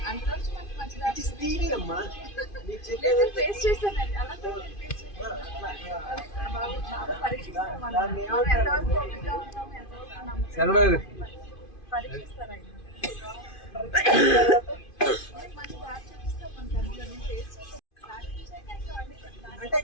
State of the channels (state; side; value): late; right; 2.5 ms